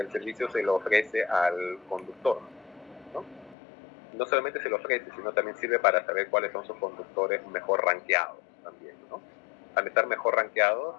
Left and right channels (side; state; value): right; drops out; at 3.6 s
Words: el servicio se lo ofrece al conductor, ¿no? No solamente se lo ofrece, sino también sirve para saber cuáles son sus conductores mejor rankeados también, ¿no? Al estar mejor rankeados,